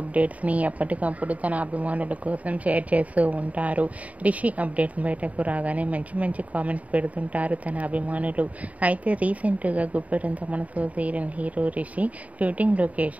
ఎప్పటికప్పుడు తన అభిమానుల కోసం షేర్ చేస్తూ ఉంటారు. రిషి అప్డేట్స్ బయటకు రాగానే మంచి మంచి కామెంట్స్ పెడుతుంటారు తన అభిమానులు. అయితే రీసెంట్గా Guppedantha Manasu serial hero Rishi shooting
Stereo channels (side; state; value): left; late; 0.069 ms